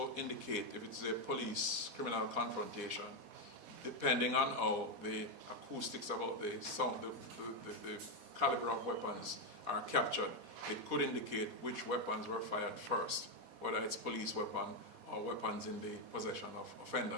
indicate if it's a police criminal confrontation, depending on how the acoustics about the sound, the caliber of weapons are captured, it could indicate which weapons were fired first, whether it's police weapon or weapons in the possession of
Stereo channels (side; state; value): left; late; 4.1 ms